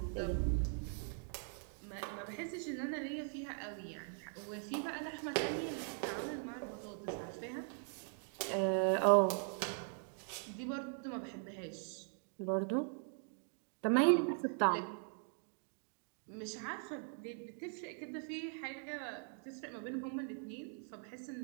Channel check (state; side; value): silent; left; 50 dB below the other